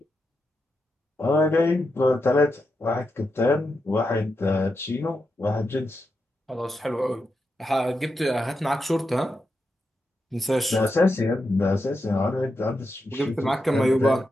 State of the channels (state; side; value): normal; both; correlation 0.86